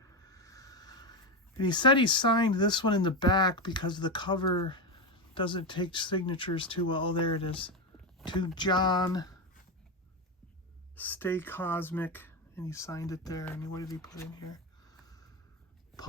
And he said he signed this one in the back because the cover doesn't take signatures too well. Oh, there it is. To John, Stay Cosmic. And he signed it there. And what did he put in here?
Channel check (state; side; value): normal; both; correlation 0.13